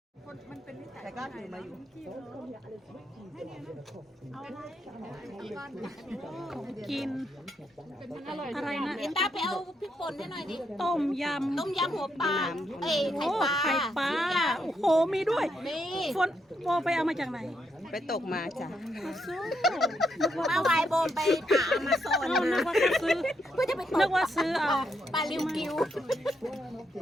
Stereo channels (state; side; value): normal; both; correlation 0.79